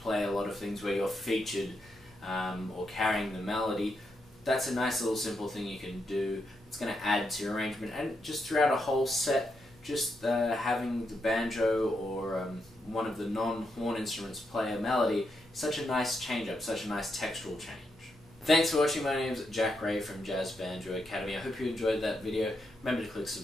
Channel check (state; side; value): normal; both; correlation 0.82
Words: a lot of things where you're featured or carrying the melody, that's a nice little simple thing you can do. It's going to add to your arrangement, and just throughout a whole set, just having the banjo or one of the non-horn instruments play a melody is such a nice change-up, such a nice textural change. Thanks for watching. My name's Jack Ray from Jazz Banjo Academy. I hope you enjoyed that video. Remember to click